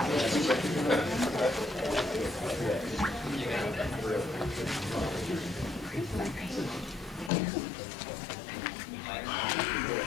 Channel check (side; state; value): right; drops out; at 7.3 s